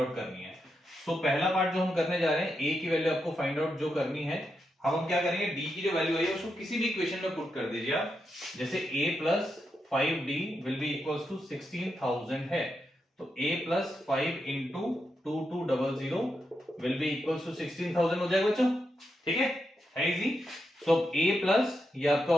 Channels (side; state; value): both; normal; correlation 0.85